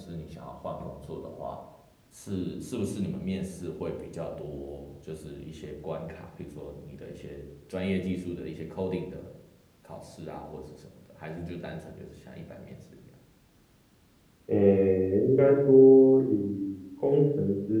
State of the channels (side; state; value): both; identical; correlation 1.00